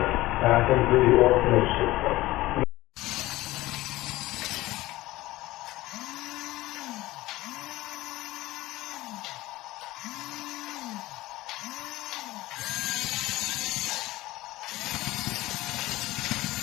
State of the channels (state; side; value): quieter; right; 17.9 dB